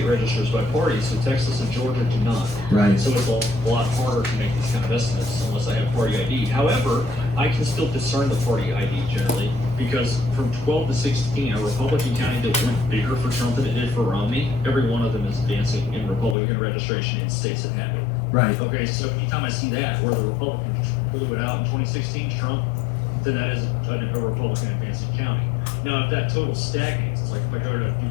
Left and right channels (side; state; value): right; drops out; at 16.4 s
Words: registers by party, so Texas and Georgia do not. Right. So it's a lot harder to make these kind of estimates unless I have party ID. However, I can still discern the party ID generally because from 12 to 16, a Republican county that went bigger for Trump than it did for Romney, every one of them is advancing in Republican registration in states that have it. Right. Okay, so anytime I see that, where the Republicans blew it out in 2016, Trump, then that is a Republican advancing county. Now, if that total stagnates, it's like if I go to